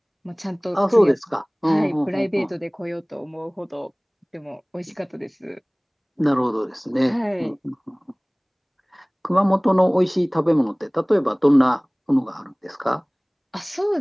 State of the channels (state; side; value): identical; both; correlation 1.00